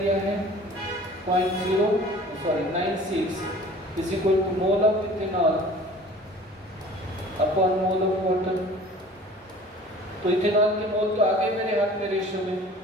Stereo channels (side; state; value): both; normal; correlation 0.46